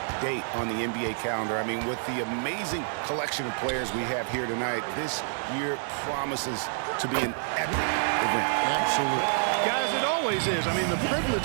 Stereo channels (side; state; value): left; silent; digital silence